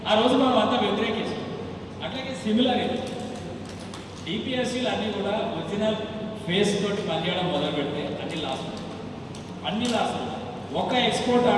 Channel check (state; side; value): identical; both; correlation 1.00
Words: ఆ రోజు మనం అంతా వ్యతిరేకిస్తాం. అట్లాగే సిమిలర్ ఇది డిపిఎస్సీలు అన్నీ కూడా ఒరిజినల్ ఫేస్ తోటి పనిచేయడం మొదలు పెడితే అన్ని లాసులు ఒక ఎక్స్పోర్ట్